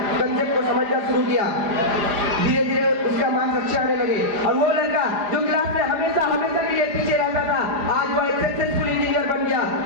कंसेप्ट को समझना शुरू किया। धीरे धीरे उसका मार्क्स अच्छे आने लगे और वो लड़का जो क्लास में हमेशा के लिए पीछे रहता था, आज वो एक सक्सेसफुल इंजीनियर बन गया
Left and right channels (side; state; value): left; late; 4.9 ms